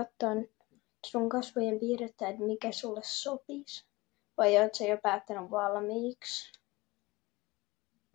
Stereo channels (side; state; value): right; quieter; 21.8 dB